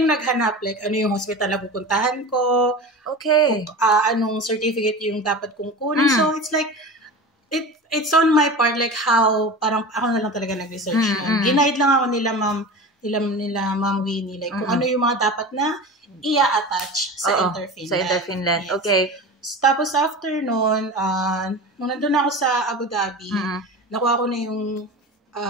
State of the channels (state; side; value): normal; both; correlation 0.31